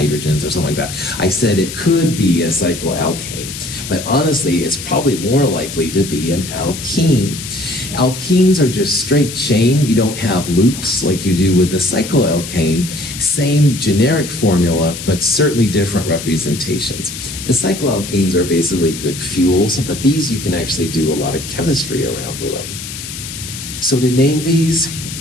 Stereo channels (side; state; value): left; noise; hiss, 9 dB below the sound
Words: or something like that, I said it could be a cycloalkane. But honestly, it's probably more likely to be an alkene. Alkenes are just straight chain. You don't have loops like you do with the cycloalkane. Same generic formula, but certainly different representations. The cycloalkanes are basically good fuels, but these you can actually do a lot of chemistry around with them. So to name these